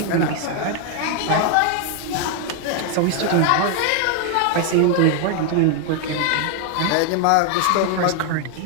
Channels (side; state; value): both; different; correlation 0.00